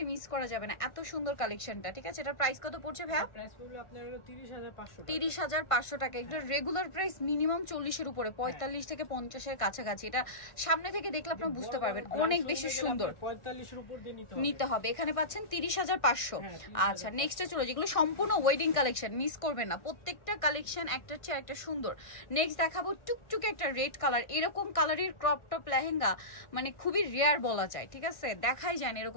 মিস করা যাবে না। এত সুন্দর কালেকশনটা, ঠিক আছে। এটার প্রাইস কত পড়ছে ভাইয়া? প্রাইস পড়বে আপনার 30500 টাকা। 30500 টাকা। এটা রেগুলার প্রাইস মিনিমাম 40 এর উপরে, 45 থেকে 50 এর কাছাকাছি। এটা সামনে থেকে দেখলে আপনারা বুঝতে পারবেন অনেক বেশি সুন্দর। 45 এর উপর দিয়ে নিতে হবে। এখানে পাচ্ছেন 30500। আচ্ছা, নেক্সটে চলো, যেগুলো সম্পূর্ণ ওয়েডিং কালেকশন, মিস করবেন না। প্রত্যেকটা কালেকশন একটার চেয়ে একটা সুন্দর। নেক্সট দেখাবো টুকটুকে একটা রেড কালার। এরকম কালারের ক্রপ টপ লেহেঙ্গা মানে খুবই রেয়ার বলা যায়, ঠিক আছে, দেখাই যায় না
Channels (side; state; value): right; late; 1.5 ms